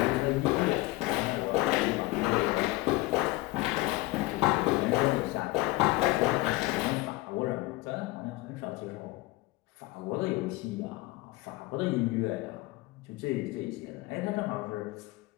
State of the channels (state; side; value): quieter; right; 20.3 dB